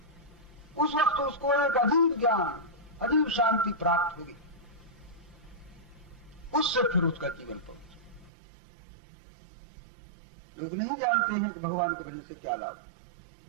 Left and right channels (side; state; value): left; drops out; at 8.3 s